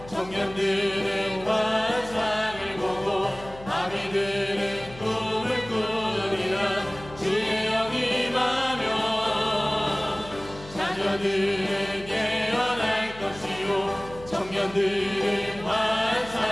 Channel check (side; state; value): left; noise; hum, 17 dB below the sound